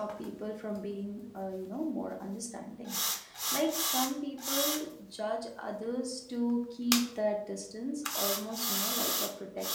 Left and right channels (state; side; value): identical; both; correlation 1.00